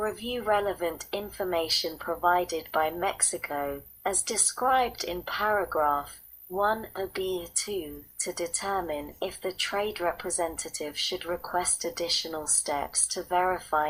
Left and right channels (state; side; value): identical; both; correlation 1.00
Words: relevant information provided by Mexico as described in paragraph 1b(2) to determine if the trade representative should request additional steps to